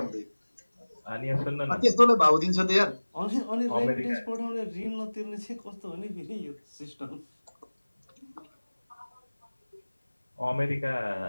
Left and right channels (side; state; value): both; inverted; correlation -1.00